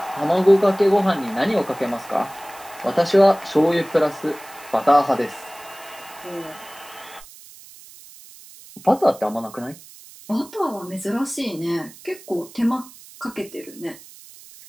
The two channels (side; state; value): right; noise; hiss, 20 dB below the sound